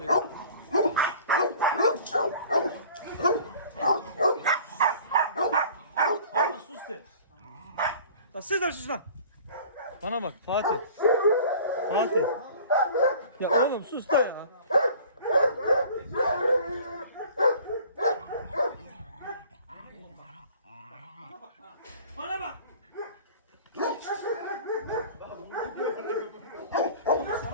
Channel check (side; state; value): both; inverted; correlation -0.46